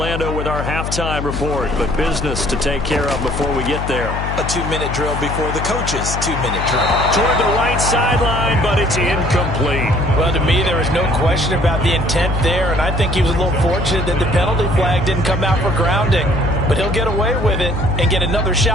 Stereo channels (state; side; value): noise; left; hum, 4 dB below the sound